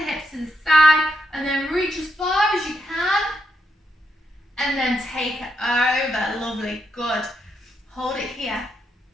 hips to the side and then reach as far as you can. And then take it over. Lovely, good. Hold it here.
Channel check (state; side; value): normal; both; correlation 0.82